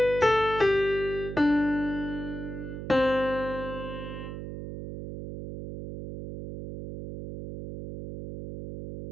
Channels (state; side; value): noise; right; hum, 8 dB below the sound